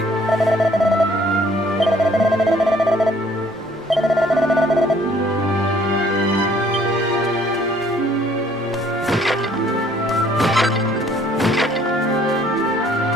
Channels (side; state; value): both; normal; correlation 0.60